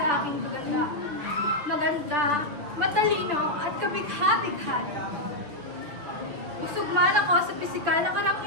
aking kagandahan. Maganda, matalino at kabigha-bighani. Busog man ako sa pisikal na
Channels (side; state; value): left; late; 6.8 ms